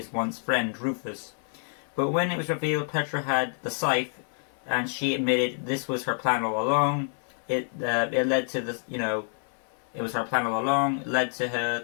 once friend, Rufus. But when it was revealed Petra had the scythe, and she admitted this was her plan all along, it led to this, it was her plan all along, led to her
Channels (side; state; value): right; silent; 59 dB below the other